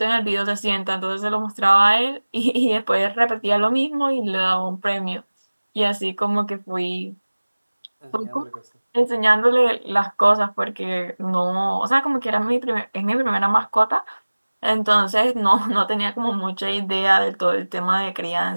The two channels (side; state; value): both; inverted; correlation -1.00